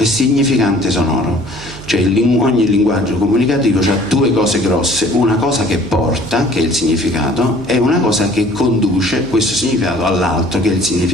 significante sonoro. Cioè ogni linguaggio comunicativo ha 2 cose grosse: una cosa che porta, che è il significato, e una cosa che conduce questo significato all'altro, che è il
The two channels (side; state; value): right; noise; hum, 17 dB below the sound